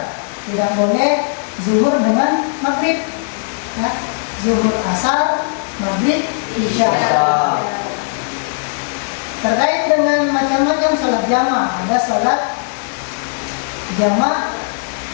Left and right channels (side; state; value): right; silent; 62 dB below the other